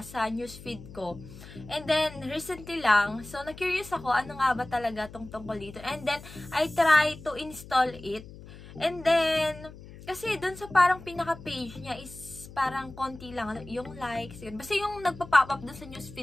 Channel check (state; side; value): noise; left; hum, 16 dB below the sound